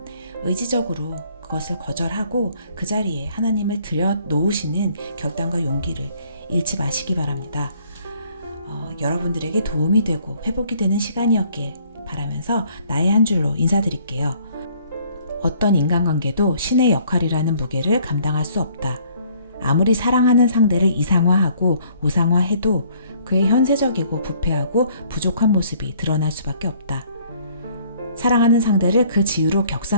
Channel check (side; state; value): both; inverted; correlation -0.60